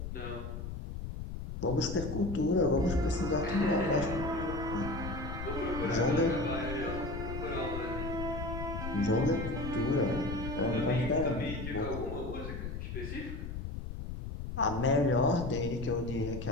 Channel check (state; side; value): noise; left; rumble, 6 dB below the sound